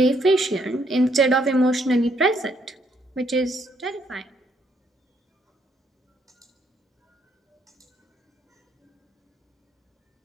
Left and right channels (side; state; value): both; normal; correlation 0.71